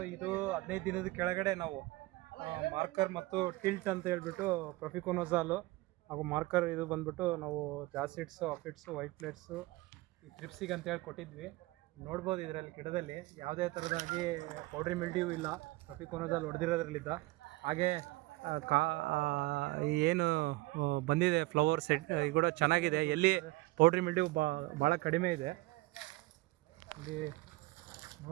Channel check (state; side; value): quieter; left; 20.7 dB